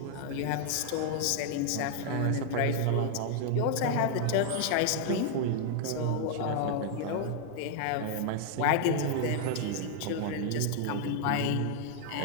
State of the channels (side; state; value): both; different; correlation 0.00